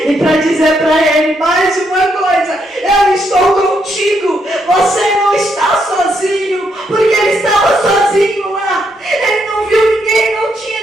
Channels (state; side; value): normal; both; correlation 0.77